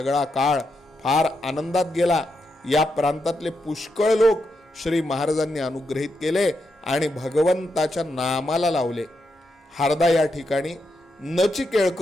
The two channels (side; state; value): both; normal; correlation 0.84